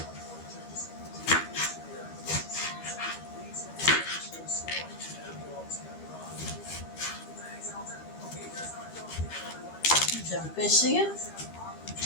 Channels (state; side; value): late; right; 13 ms